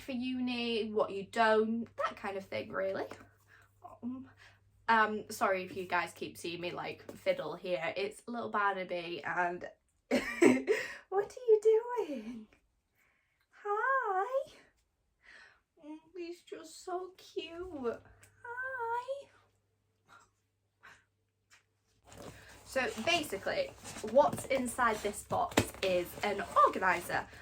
uni, what you don't, that kind of thing, really. Sorry if you guys keep seeing me like fiddle here. It's little Barnaby and what are you doing? Hi. He's just so cute. Hi. So basically, what's inside this box is an organiser.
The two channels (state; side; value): identical; both; correlation 1.00